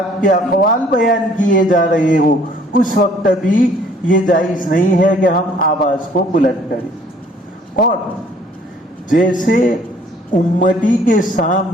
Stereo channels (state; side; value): normal; both; correlation 0.58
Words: کے اقوال بیان کیے جا رہے ہو، اس وقت بھی یہ جائز نہیں ہے کہ ہم آواز کو بلند کریں۔ اور جیسے امتی کے